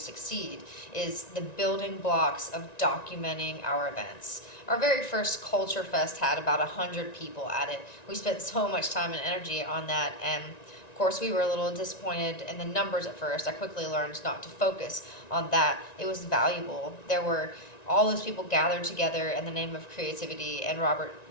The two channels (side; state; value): right; late; 1.9 ms